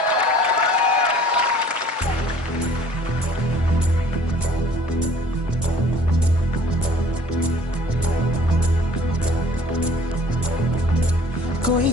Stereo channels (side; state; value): both; normal; correlation 0.53